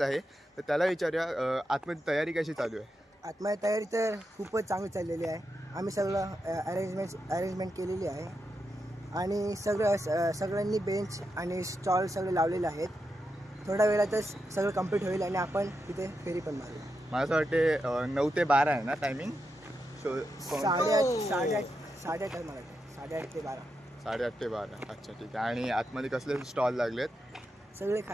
आहे. तर त्याला विचारूया आतमध्ये तयारी कशी चालू आहे. आतमध्ये तयारी तर खूपच चांगली चाललेली आहे. आम्ही सगळं अरेंजमेंट केलेली आहे आणि सगळ्यांनी बेंच आणि स्टॉल सगळे लावलेले आहेत. थोड्या वेळातच सगळं कंप्लीट होईल आणि आपण तिथे फेरी पण मारू. मला असं वाटते 9 ते 12 आहे ना टायमिंग. 8:30 आहे मला. 8:30 ते 12. 8:30 ते 12. अच्छा, ठीक आहे. आणि आतमध्ये कसले स्टॉल लागलेत? सगळे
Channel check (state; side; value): normal; both; correlation 0.86